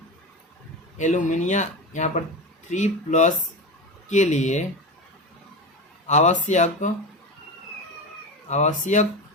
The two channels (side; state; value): both; normal; correlation 0.22